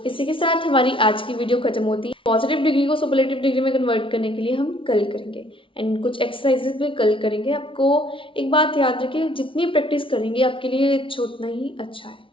इसी के साथ हमारी आज की वीडियो खत्म होती है। पॉजिटिव डिग्री को सुपरलेटिव डिग्री में कन्वर्ट करने के लिए हम कल करेंगे एंड कुछ एक्सरसाइजेस भी कल करेंगे। आपको एक बात याद रखिए, जितनी प्रैक्टिस करेंगे आपके लिए उतना ही अच्छा है।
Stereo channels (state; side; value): late; right; 0.25 ms